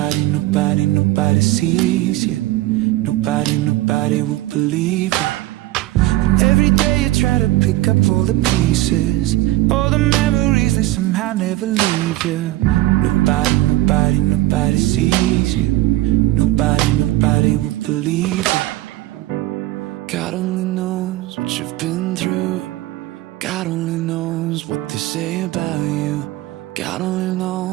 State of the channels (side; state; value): left; quieter; 16.9 dB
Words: nobody, nobody sees you. Nobody, nobody will believe you. And every day you try to pick up all the pieces, all the memories, they somehow never leave you. Nobody, nobody, nobody sees you. Nobody, nobody will believe you. God only knows what you've been through. God only knows what they say about you. God only